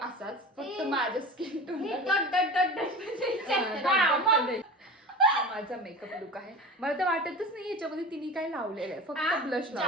फक्त माझ्या स्किन टोन. माझा मेकअप लुक आहे. मला तर वाटतच नाही याच्यामध्ये तिने काय लावलेलं आहे, फक्त ब्लश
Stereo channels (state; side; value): normal; both; correlation 0.33